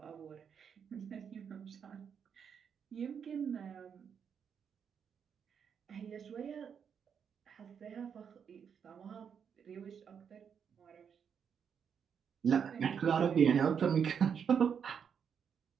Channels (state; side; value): quieter; left; 7.3 dB